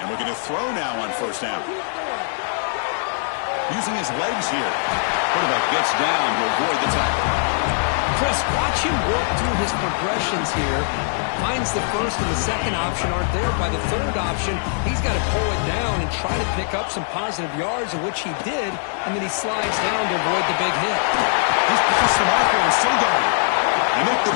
And we're going to throw now on first down. Using his legs here. Quarterback gets down to avoid the tackle. Chris, watch him work through his progressions here. Finds the first and the second option aren't there. By the third option, he's got to pull it down and try to pick up some positive yards, of which he did, and then he slides down to avoid the big hit. He's past the marker and still going. They make the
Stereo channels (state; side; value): silent; right; digital silence